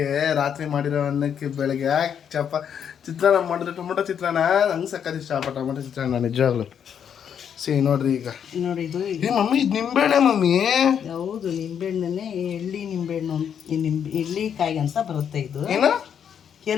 ರಾತ್ರಿ ಮಾಡಿರೋ ಅನ್ನಕ್ಕೆ ಬೆಳಗ್ಗೆ ಚಿತ್ರಾನ್ನ ಮಾಡಿದ್ರೆ ಟೊಮೊಟೊ ಚಿತ್ರಾನ್ನ ನಂಗೆ ಸಕ್ಕತ್ ಇಷ್ಟ. ಟೊಮೊಟೊ ಚಿತ್ರಾನ್ನ ನಿಜವಾಗ್ಲು. ನೋಡ್ರಿ ಈಗ ನೋಡಿ ಇದು ಮಮ್ಮಿ, ಇದು ನಿಂಬೆಹಣ್ಣೆ ಮಮ್ಮಿ. ಹೌದು, ನಿಂಬೆಹಣ್ಣೆ. ಎಳ್ಳಿ ನಿಂಬೆಹಣ್ಣು, ಎಳ್ಳಿಕಾಯಿ ಅಂತ ಬರುತ್ತೆ. ಇದು ಏನು?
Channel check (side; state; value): right; quieter; 8.2 dB